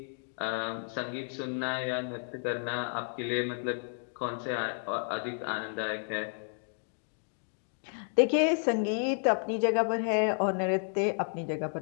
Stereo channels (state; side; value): silent; right; 57 dB below the other